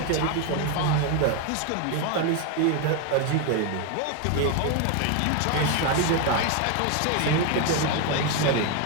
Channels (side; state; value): both; different; correlation 0.01